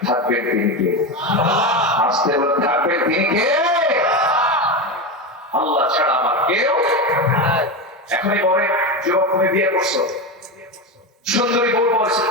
থাকবেন তিনি কে? আসতে বলে থাকবেন তিনি কে? আল্লাহ ছাড়া আমার কেউ। এখনই বলে যুবক তুমি বিয়ে করছো, সুন্দরী বউ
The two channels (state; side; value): normal; both; correlation 0.17